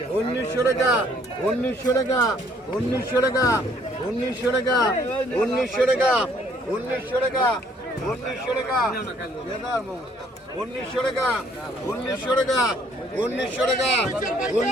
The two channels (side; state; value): both; normal; correlation 0.63